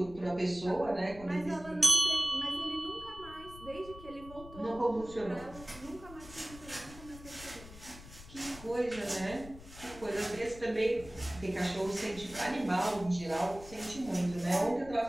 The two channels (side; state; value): left; noise; rumble, 16 dB below the sound